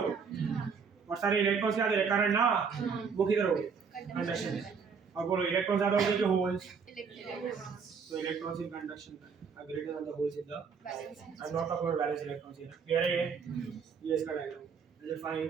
तो। और सारे इलेक्ट्रॉन्स क्या दे रहे? करंट ना, वो किधर होंगे? कंडक्शन। और बोलो इलेक्ट्रॉन ज्यादा होंगे कि holes? So electrons in conduction are greater than the holes in the valence. I'm not talking about valence electrons here. Clear है ये इसका डायग्राम। जैसे फाइन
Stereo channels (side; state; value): left; quieter; 5.9 dB